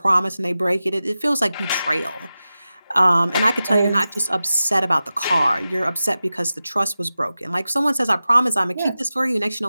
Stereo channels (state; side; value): inverted; both; correlation -0.94